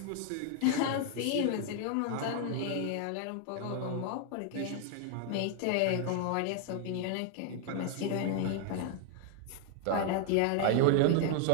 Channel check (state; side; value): different; both; correlation 0.00